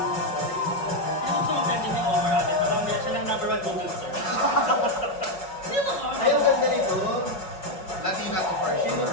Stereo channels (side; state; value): right; late; 5.4 ms